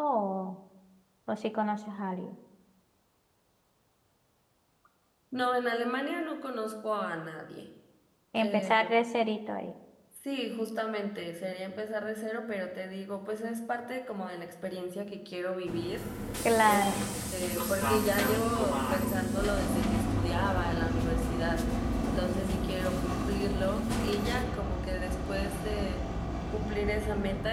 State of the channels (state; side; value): identical; both; correlation 1.00